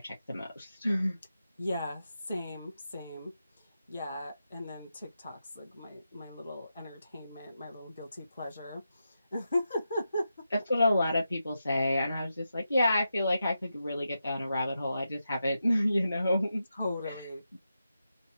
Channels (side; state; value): both; inverted; correlation -0.88